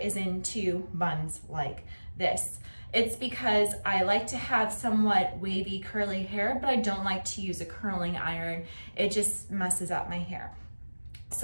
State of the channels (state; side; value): inverted; both; correlation -1.00